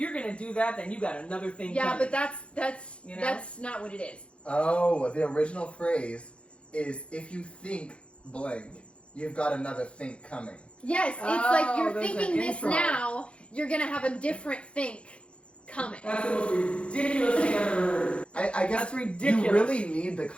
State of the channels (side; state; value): right; late; 0.059 ms